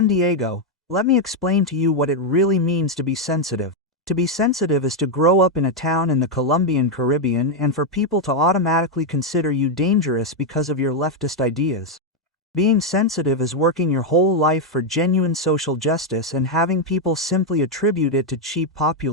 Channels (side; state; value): both; normal; correlation 0.01